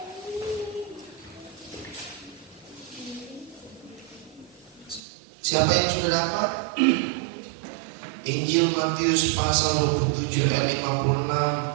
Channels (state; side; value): drops out; left; at 5.0 s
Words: Siapa yang sudah dapat? Injil Matius pasal 27 ayat